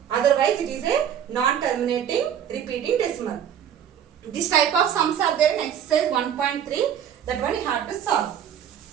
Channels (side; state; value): left; quieter; 9.2 dB